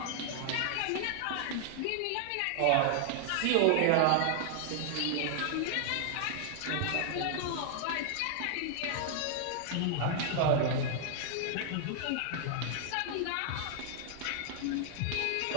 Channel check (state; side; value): different; both; correlation 0.00